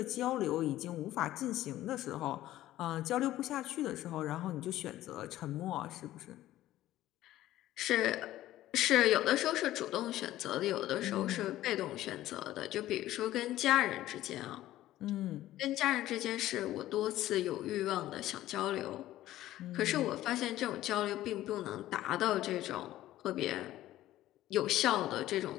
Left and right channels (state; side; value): quieter; right; 14.5 dB